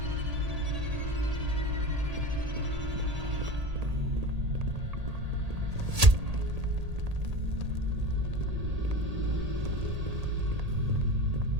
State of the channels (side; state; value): left; late; 1.8 ms